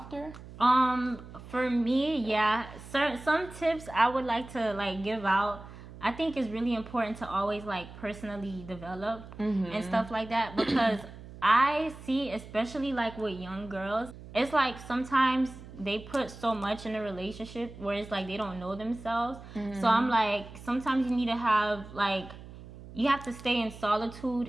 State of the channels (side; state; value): right; noise; hum, 16 dB below the sound